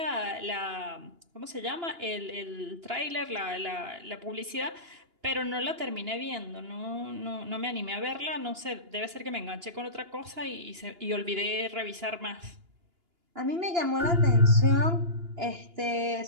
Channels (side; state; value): left; late; 2.9 ms